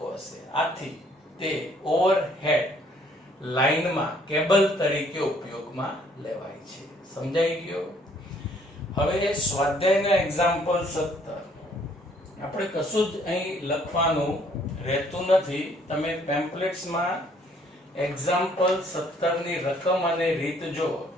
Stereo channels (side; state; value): both; normal; correlation 0.62